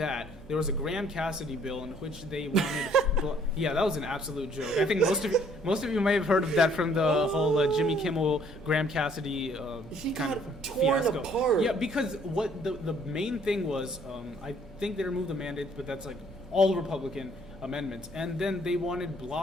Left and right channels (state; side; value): normal; both; correlation 0.61